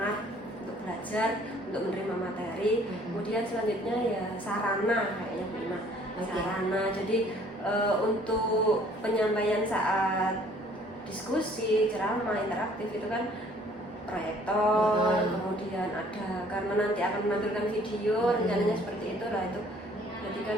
untuk belajar, untuk menerima materi. Kemudian selanjutnya ya sarana kayaknya prima. Sarana. Jadi untuk penyampaian saat diskusi, ceramah, interaktif itu kan proyektor, kemudian ada karena nanti akan menampilkan video, rencananya seperti itu lah itu. Jadi kan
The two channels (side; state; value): both; normal; correlation 0.57